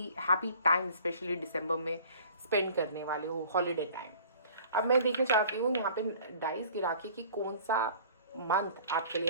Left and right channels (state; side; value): inverted; both; correlation -0.49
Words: हैप्पी टाइम स्पेशली दिसंबर में स्पेंड करने वाले हो, हॉलीडे टाइम। अब मैं देखना चाहती हूँ यहाँ पे डाइस गिरा के कि कौन सा मंथ आपके लिए